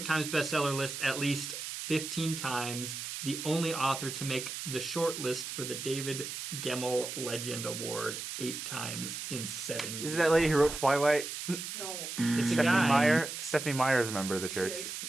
Times bestseller list at least 15 times. The only author to make the short list for the David Gemmell Legend Award 8 times in 7 years. Is it that lady who wrote Twilight? No. It's a Stephanie guy. Meyer? Stephanie Meyer is a member of the She church. is.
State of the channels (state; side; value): noise; right; hiss, 6 dB below the sound